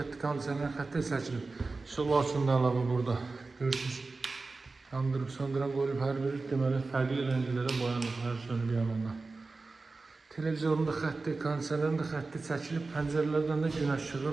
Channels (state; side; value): quieter; left; 3.7 dB